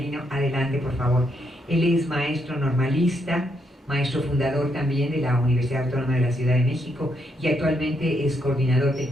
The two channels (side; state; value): both; normal; correlation 0.77